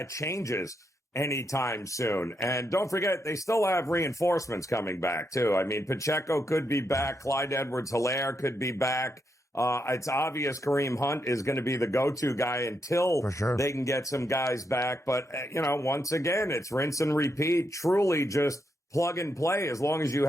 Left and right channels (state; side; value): normal; both; correlation 0.81